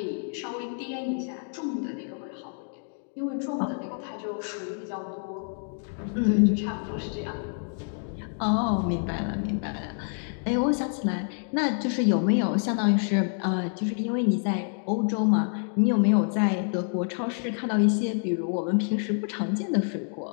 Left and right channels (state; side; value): silent; right; 59 dB below the other